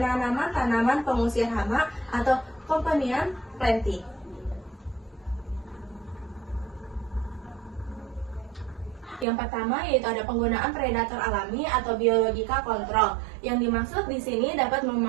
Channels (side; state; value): left; drops out; at 9.2 s